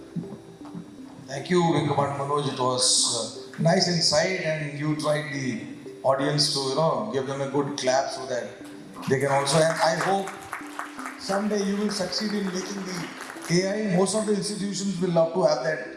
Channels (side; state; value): both; identical; correlation 1.00